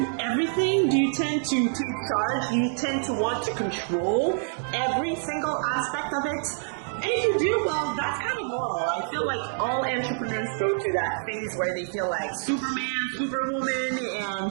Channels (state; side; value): silent; left; digital silence